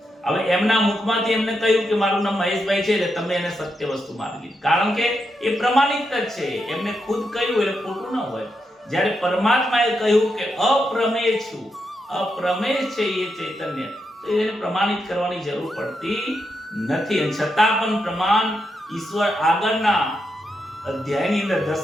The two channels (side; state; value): both; normal; correlation 0.84